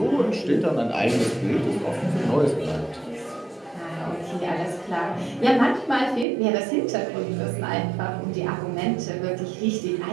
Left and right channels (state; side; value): drops out; left; at 6.2 s